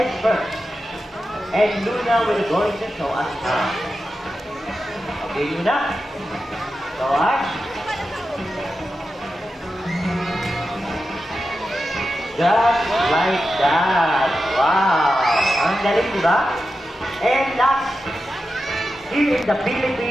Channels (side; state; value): both; normal; correlation 0.91